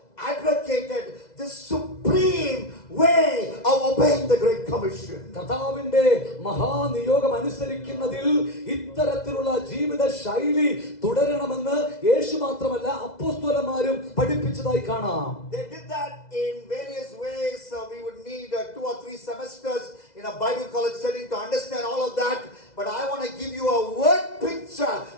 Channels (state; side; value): late; right; 2.0 ms